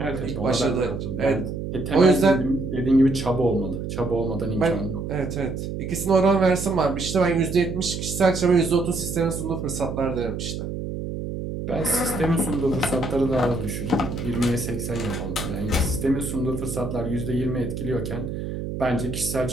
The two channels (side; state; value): right; noise; hum, 5 dB below the sound